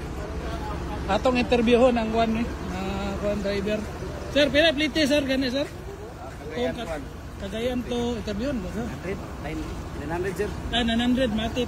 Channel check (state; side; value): identical; both; correlation 1.00